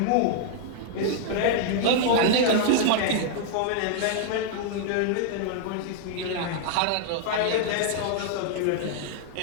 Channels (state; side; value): different; both; correlation -0.01